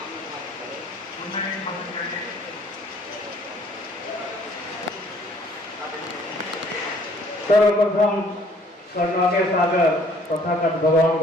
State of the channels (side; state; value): both; normal; correlation 0.59